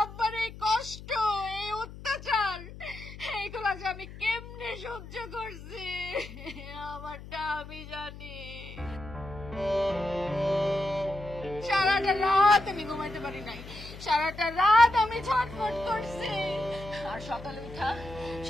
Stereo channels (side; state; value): left; noise; hum, 14 dB below the sound